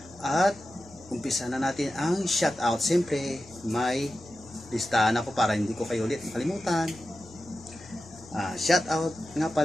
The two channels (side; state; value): both; normal; correlation 0.92